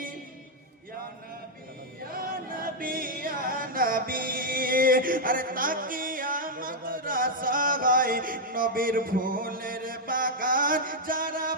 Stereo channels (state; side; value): normal; both; correlation -0.02